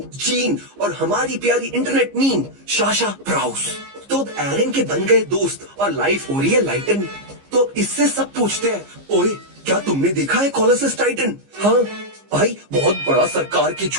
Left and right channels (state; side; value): late; left; 15 ms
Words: gene और हमारी प्यारी इंटरनेट मीन शाशा प्राउस। तो अब एरन के बन गए दोस्त और लाइफ हो रही है लाइटन। तो इससे सब पूछते हैं, ओए क्या तुमने देखा है कोलोसस टाइटन? हाँ भाई, बहुत बड़ा, सरकार के